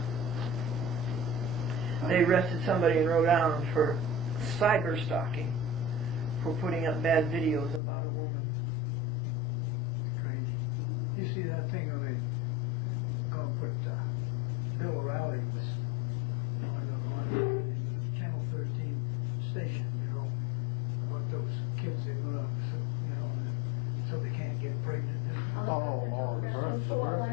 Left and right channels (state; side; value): drops out; right; at 7.8 s